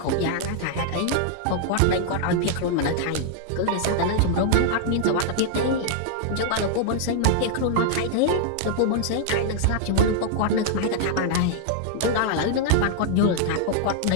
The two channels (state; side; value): different; both; correlation -0.01